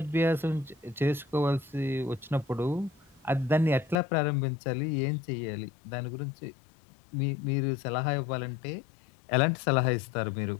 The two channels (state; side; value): drops out; right; at 4.0 s